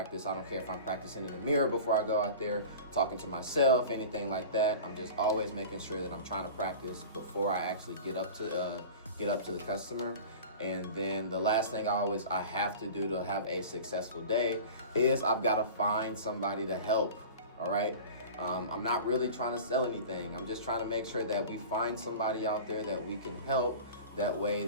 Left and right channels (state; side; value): inverted; both; correlation -0.36